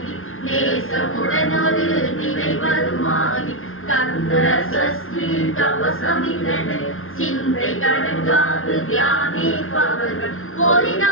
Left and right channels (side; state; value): right; late; 0.60 ms